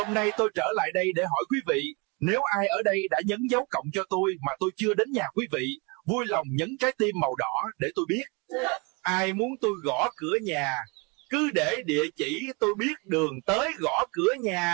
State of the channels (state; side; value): quieter; left; 30.3 dB